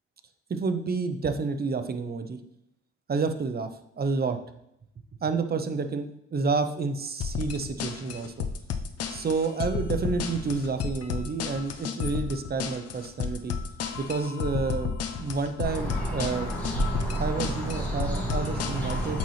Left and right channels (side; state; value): both; normal; correlation 0.48